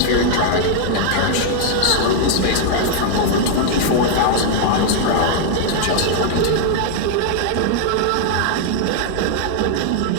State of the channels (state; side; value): different; both; correlation 0.00